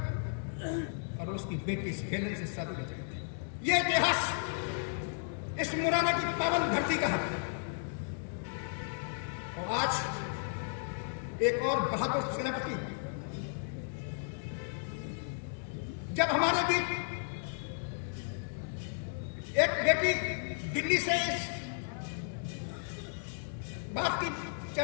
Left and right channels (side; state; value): right; silent; digital silence